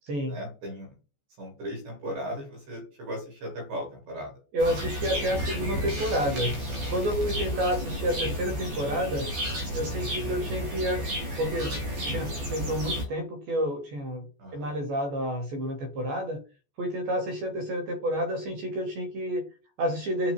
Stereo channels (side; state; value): left; late; 14 ms